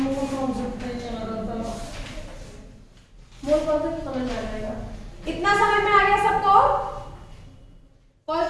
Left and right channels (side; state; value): both; identical; correlation 1.00